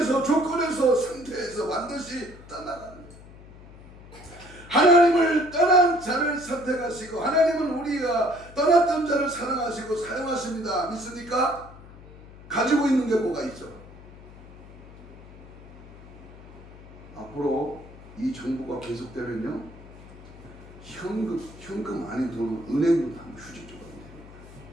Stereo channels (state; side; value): noise; left; hum, 19 dB below the sound